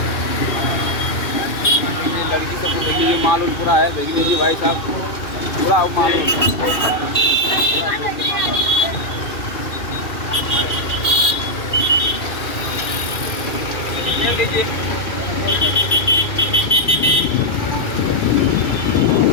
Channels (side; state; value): right; late; 2.4 ms